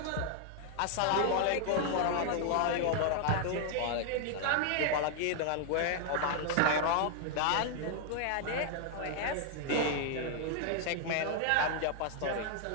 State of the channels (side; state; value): both; different; correlation 0.00